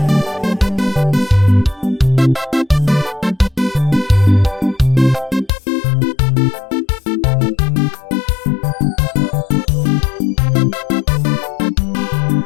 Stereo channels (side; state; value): right; drops out; at 5.5 s